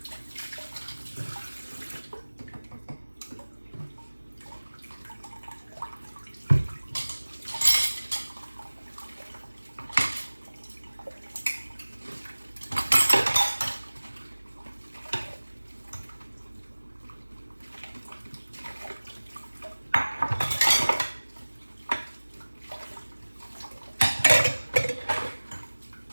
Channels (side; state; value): both; inverted; correlation -1.00